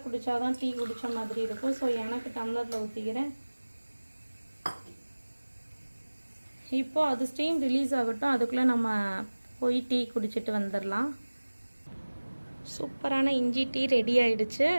குடித்தா தான் டீ குடித்த மாதிரி இருக்கும். ஸோ எனக்கு டம்ளரில் ஊற்றிக்கிறேன். இப்போது அது ஸ்டீம் ரிலீஸ் ஆகட்டும், அதுக்குள்ளே நம்ம போய் டீ குடிச்சிட்டு வந்துடலாம். சூப்பரான இஞ்சி டீ ரெடி ஆயிடுச்சு.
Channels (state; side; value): inverted; both; correlation -1.00